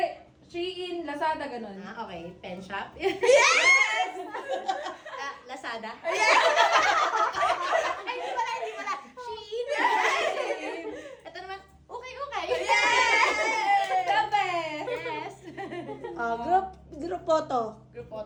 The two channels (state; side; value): identical; both; correlation 1.00